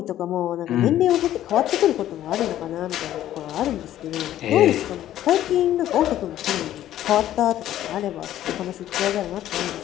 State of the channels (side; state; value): right; quieter; 12.6 dB